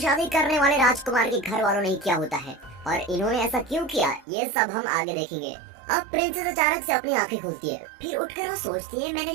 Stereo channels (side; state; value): left; drops out; at 4.2 s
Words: करने वाले राजकुमार के घर वालों ने ही किया होता है। और इन्होंने ऐसा क्यों किया ये सब हम आगे देखेंगे। अब प्रिंसेस अचानक से अपनी आंखें खुलती है, फिर उठकर वो सोचती है मैंने